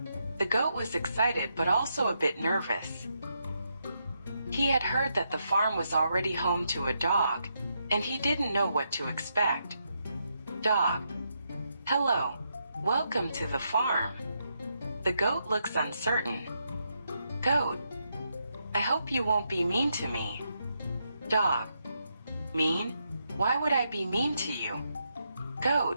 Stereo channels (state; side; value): inverted; both; correlation -0.81